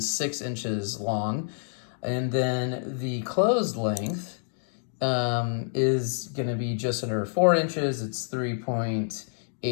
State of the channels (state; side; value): silent; right; digital silence